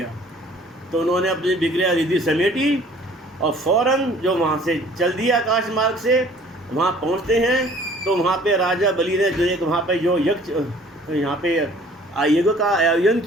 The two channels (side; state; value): both; normal; correlation 0.53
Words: तो उन्होंने अपनी विक्रिया रिद्धि समेटी और फ़ौरन जो वहाँ से चल दिया आकाश मार्ग से, वहाँ पहुँचते हैं। तो वहाँ पे राजा बलि ने जो एक वहाँ पे जो यज्ञ, यहाँ पे यज्ञ का आयोजन